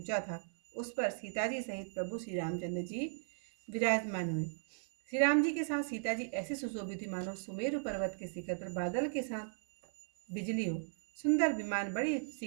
था उस पर सीता जी सहित प्रभु श्री रामचंद्र जी विराजमान हुए। श्री राम जी के साथ सीता जी ऐसे सुशोभित थी मानो सुमेरु पर्वत के शिखर पर बादल के साथ बिजली हो। सुंदर विमान बड़ी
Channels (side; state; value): left; silent; 53 dB below the other